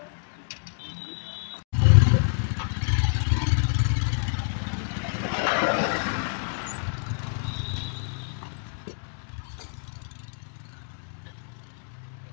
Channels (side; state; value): right; silent; digital silence